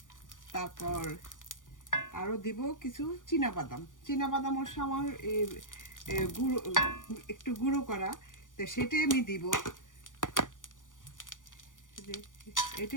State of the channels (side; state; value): right; late; 0.88 ms